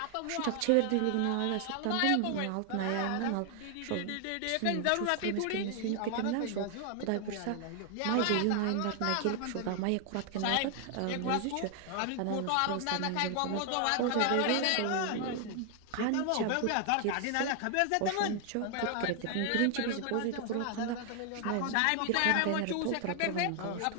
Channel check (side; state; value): both; different; correlation 0.00